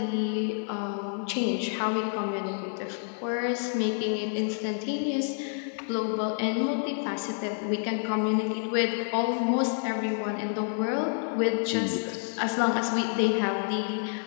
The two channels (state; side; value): silent; right; 58 dB below the other